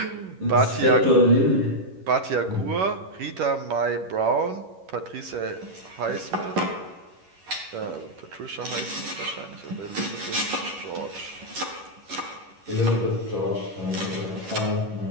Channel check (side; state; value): left; late; 11 ms